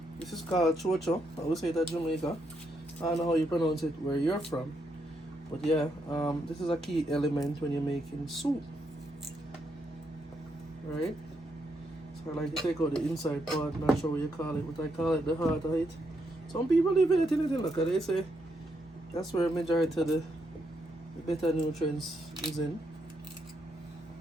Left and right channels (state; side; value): normal; both; correlation 0.79